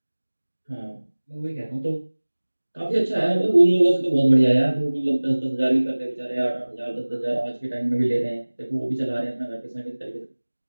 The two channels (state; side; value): inverted; both; correlation -1.00